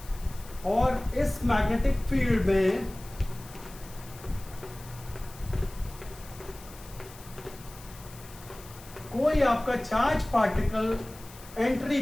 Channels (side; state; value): left; noise; hiss, 19 dB below the sound